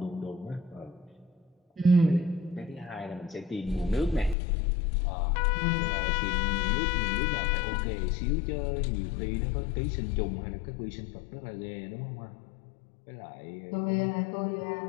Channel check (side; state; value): right; drops out; at 4.4 s